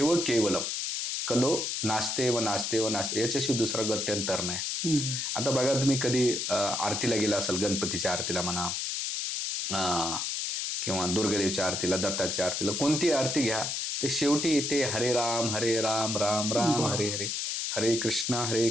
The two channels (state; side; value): noise; left; hiss, 2 dB below the sound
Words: केवलम कलो नास्तेव याच्याशी दुसरा गत्यंतर नाही. आता बघा तुम्ही कधी आरतीला गेला असाल, गणपतीच्या आरतीला म्हणा किंवा दुर्गादेवीच्या आरतीला, दत्ताच्या आरतीला, कोणती आरती घ्या ते शेवटी येते हरे राम राम हरे हरे, हरे